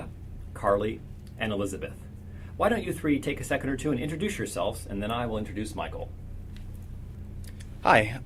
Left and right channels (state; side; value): identical; both; correlation 1.00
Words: Carly, and Elizabeth. Why don't you three take a second or two and introduce yourselves, and then I will introduce Michael. Hi,